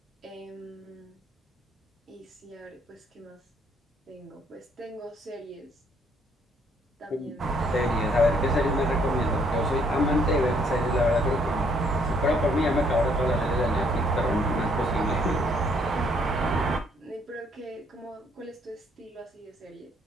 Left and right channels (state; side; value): normal; both; correlation 0.67